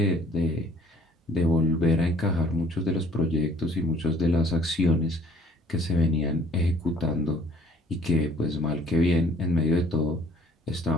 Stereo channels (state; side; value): normal; both; correlation 0.57